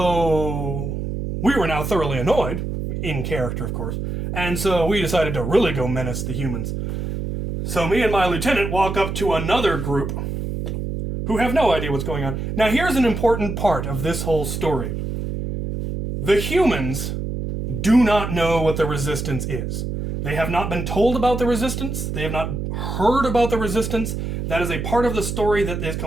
we were now thoroughly annoyed, in character, of course. And so we decided to really go menace the humans. So me and my lieutenant walk up to another group who have no idea what's going on. Now here's an important part of this whole story. The humans do not know what the resistance is. They have not been told about the resistance. They have not heard about the resistance. That is a part of the story that is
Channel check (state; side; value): noise; right; hum, 4 dB below the sound